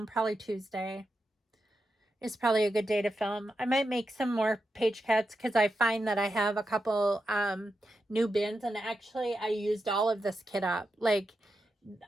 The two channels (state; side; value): normal; both; correlation 0.87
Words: Probably Tuesday is probably a good day to film. I might make some more page cuts because I find that I have a couple new bins. And actually, I used all of this kit up. Like,